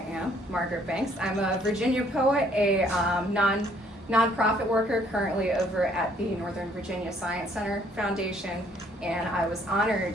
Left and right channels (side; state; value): both; normal; correlation 0.63